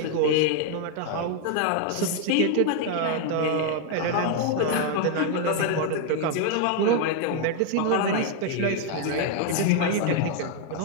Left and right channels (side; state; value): both; different; correlation 0.00